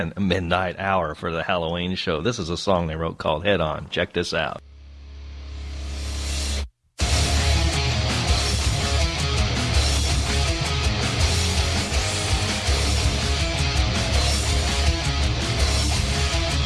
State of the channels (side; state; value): both; identical; correlation 1.00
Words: a Midnight Hour for the Halloween show. This is a song they wrote called Head On. Check this out.